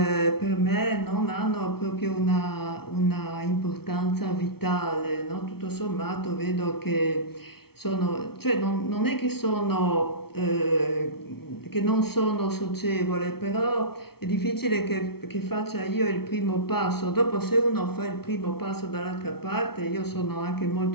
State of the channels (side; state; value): right; late; 0.95 ms